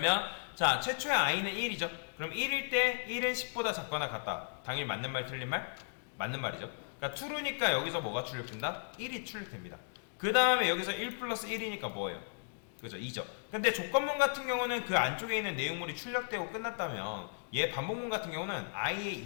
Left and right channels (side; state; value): right; silent; digital silence